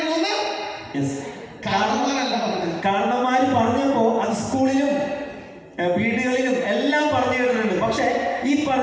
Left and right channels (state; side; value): identical; both; correlation 1.00